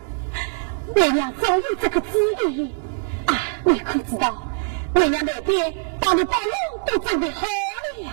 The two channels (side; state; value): left; silent; digital silence